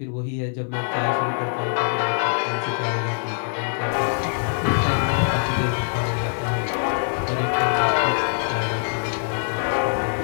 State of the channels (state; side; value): silent; right; 63 dB below the other